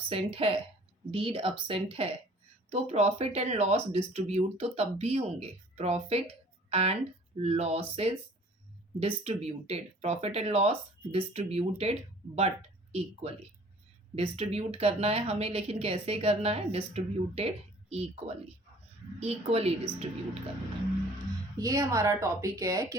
है, डीड absent है तो प्रॉफिट एंड लॉस डिस्ट्रीब्यूट तो तब भी होंगे। Profit and losses distributed, profit and loss distributed but equally, distribute करना है हमें, लेकिन कैसे करना है, डिस्ट्रीब्यूटेड इक्वली, इक्वली डिस्ट्रीब्यूट करना है। ये हमारा टॉपिक है कि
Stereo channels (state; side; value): normal; both; correlation 0.52